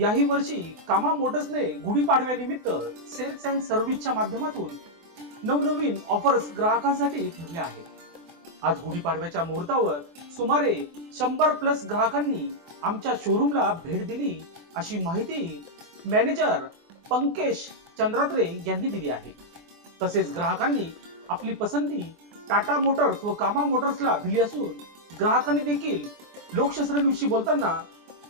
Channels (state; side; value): late; left; 24 ms